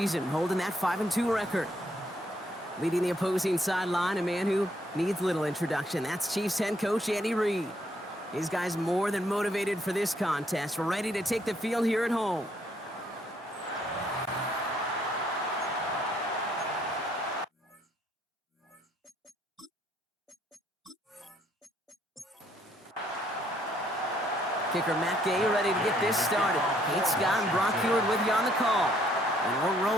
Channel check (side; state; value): both; normal; correlation 0.68